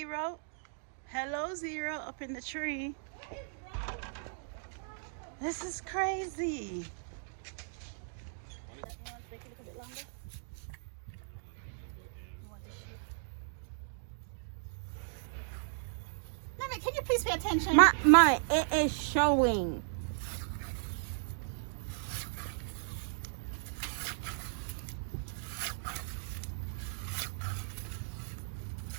up in the tree. This is crazy. Mommy, can you please pay attention? Mommy, it is showing.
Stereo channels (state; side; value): silent; left; digital silence